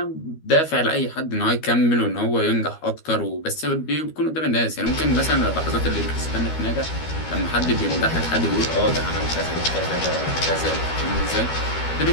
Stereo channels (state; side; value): late; right; 13 ms